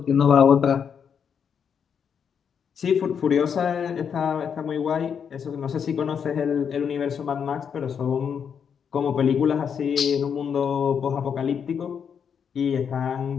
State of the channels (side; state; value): right; quieter; 7.2 dB